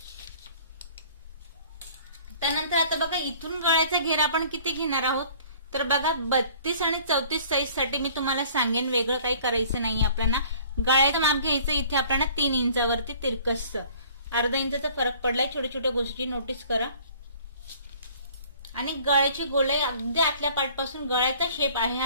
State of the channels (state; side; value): inverted; both; correlation -0.52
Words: त्यानंतर आता बघा इथून गळ्याचा घेर आपण किती घेणार आहोत. तर बघा 32 आणि 34 साईज साठी मी तुम्हाला सांगेन. वेगळं काही करायचं नाही आपल्याला. गळ्याचं माप घ्यायचं इथे आपल्याला 3 इंचावरती तिरकसचं. अर्धा इंचाचा फरक पडलाय. छोट्या छोट्या गोष्टी नोटीस करा. आणि गळ्याची गोलाई अगदी आतल्या पार्टपासून गळ्याचा शेप आहे